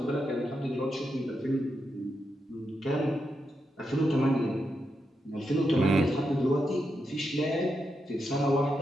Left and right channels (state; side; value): normal; both; correlation 0.85